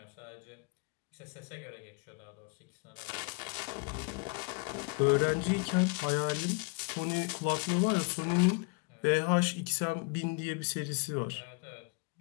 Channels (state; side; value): quieter; right; 31.8 dB